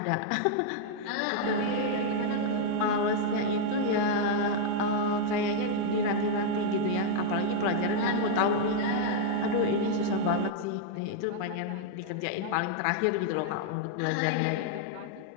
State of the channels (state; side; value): different; both; correlation 0.00